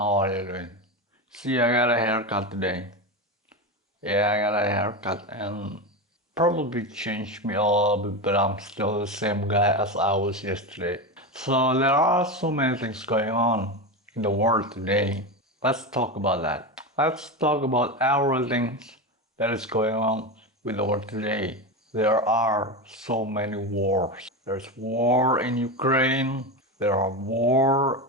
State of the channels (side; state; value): both; normal; correlation 0.18